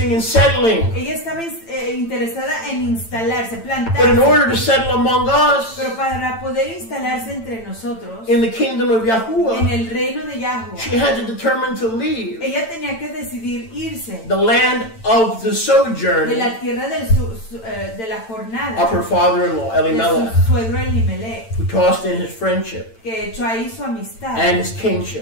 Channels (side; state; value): right; late; 8.9 ms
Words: in settling. Ella estaba interesada en instalarse, But in plantarse. order to settle among us, Pero para poder instalarse entre nosotros, in the kingdom of en Yahuwah, el reino de Yahuwah, she had to determine to leave ella tenía que decidir irse the land of the de sojourn la tierra de la jornada of her father-in-law, de Elimelech, su suegro Elimelech, who tossed in his friendship que echó ahí su amistad and his